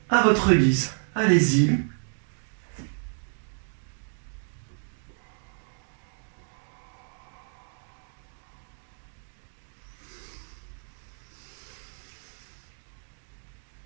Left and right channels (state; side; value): silent; left; digital silence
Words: à votre guise. Allez-y.